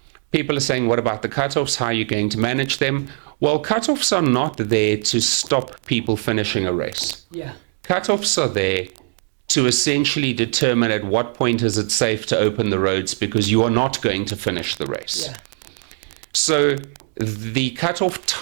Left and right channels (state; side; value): silent; left; digital silence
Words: People are saying, what about the cutoffs? How are you going to manage them? Well, cutoffs are not there to stop people finishing a race. Yeah. Cutoffs are there to essentially determine at what point is it safe to open the roads, because you are not going to finish the race. Yeah. So the cutoff